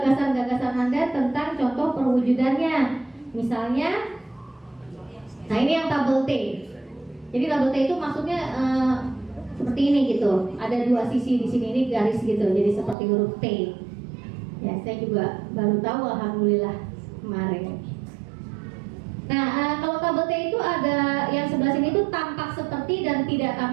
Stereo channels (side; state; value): left; drops out; at 13.0 s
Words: Anda tentang contoh perwujudannya. Misalnya, nah ini yang tabel T. Jadi tabel T itu maksudnya seperti ini gitu. Ada dua sisi di sini, ini garis gitu. Jadi seperti huruf T. Ya, saya juga baru tahu, alhamdulillah kemarin. Nah, kalau tabel T itu ada yang sebelah sini itu tampak seperti dan tidak